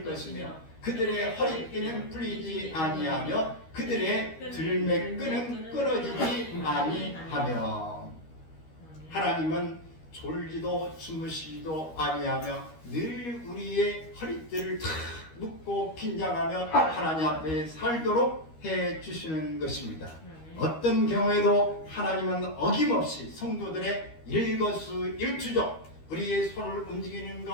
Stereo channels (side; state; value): right; late; 13 ms